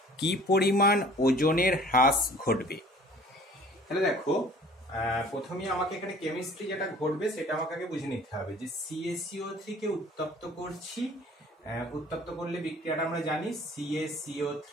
কি পরিমাণ ওজনের হ্রাস ঘটবে। তাহলে দেখো, প্রথমে আমাকে এখানে কেমিস্ট্রি যেটা ঘটবে সেটা আমাকে আগে বুঝে নিতে হবে যে CaCO3 কে উত্তপ্ত করছি। উত্তপ্ত করলে বিক্রিয়াটা আমরা জানি CaCO3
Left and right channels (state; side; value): normal; both; correlation 0.50